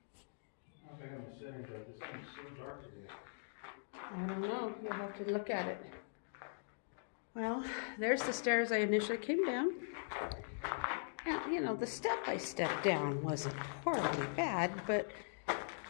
I think I'm sitting there. This thing's so dark today. I don't know. You'll have to look at it. Well, there's the stairs I initially came down. Now, you know, the step I stepped down wasn't horribly bad, but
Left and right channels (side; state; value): right; silent; digital silence